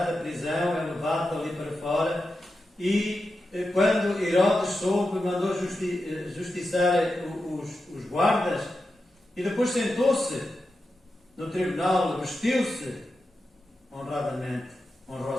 da prisão, é levado dali para fora, e quando Herodes soube, mandou justiçar os guardas, e depois sentou-se no tribunal, vestiu-se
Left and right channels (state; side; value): normal; both; correlation 0.90